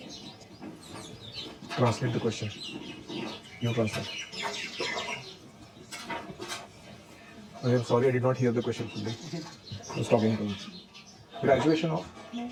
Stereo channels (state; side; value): identical; both; correlation 1.00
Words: Translate the question. You translate. I am sorry, I did not hear the question fully. I was talking to you. Graduation of?